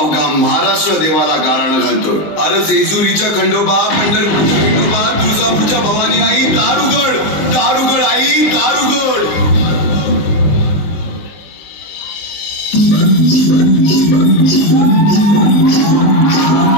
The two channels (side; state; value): right; late; 20 ms